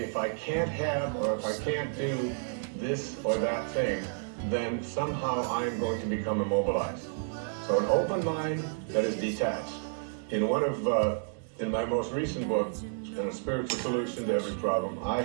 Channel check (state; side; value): silent; left; digital silence